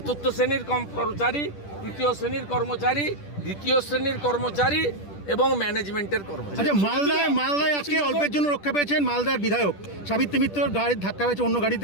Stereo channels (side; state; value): right; late; 10 ms